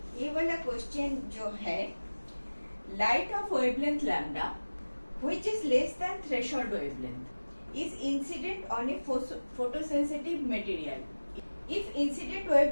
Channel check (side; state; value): both; inverted; correlation -1.00